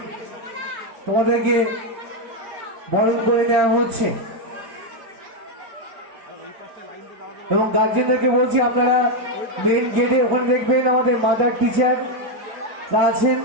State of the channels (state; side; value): late; left; 5.1 ms